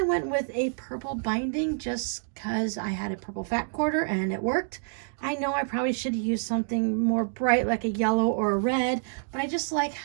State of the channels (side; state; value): left; silent; digital silence